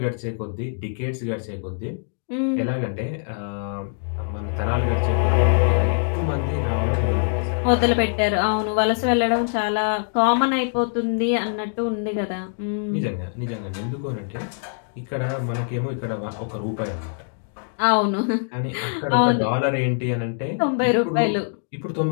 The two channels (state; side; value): silent; right; digital silence